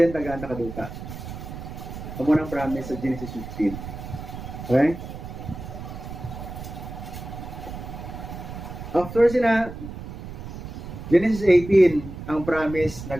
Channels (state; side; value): noise; right; rumble, 10 dB below the sound